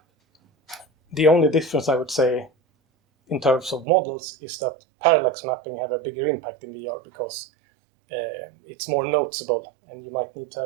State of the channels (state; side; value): drops out; left; at 3.9 s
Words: The only difference, I would say, in terms of models is that parallax mapping have a bigger impact in VR, because it's more noticeable, and you might need to